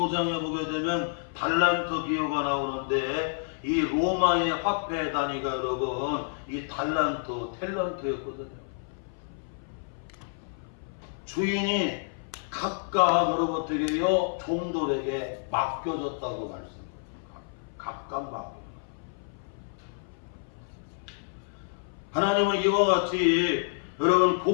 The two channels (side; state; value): right; silent; 57 dB below the other